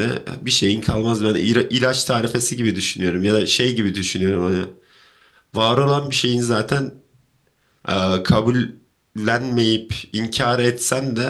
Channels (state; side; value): identical; both; correlation 1.00